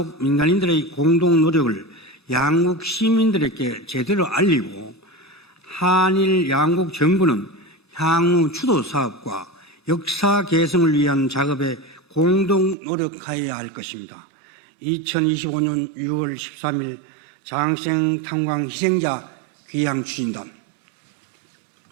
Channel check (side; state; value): left; drops out; at 12.8 s